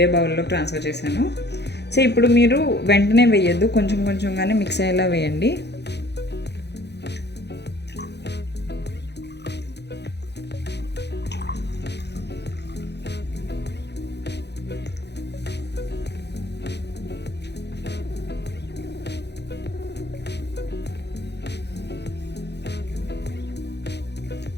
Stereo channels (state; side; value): late; right; 0.49 ms